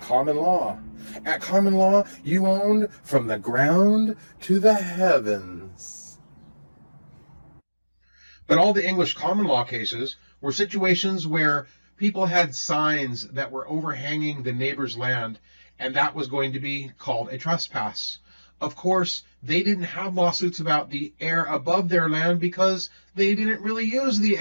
common law. At common law, you owned from the ground to the heavens. But all the English common law cases were situations where people had signs that were overhanging the neighbor's land, and that was going to be called a trespass. Of course, they didn't have lawsuits about the air above their land because they didn't really use the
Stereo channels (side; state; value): both; inverted; correlation -1.00